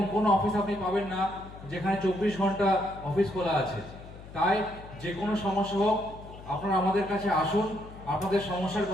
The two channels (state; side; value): noise; left; hum, 16 dB below the sound